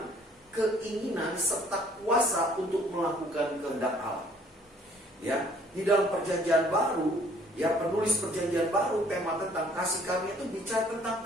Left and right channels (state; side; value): normal; both; correlation 0.58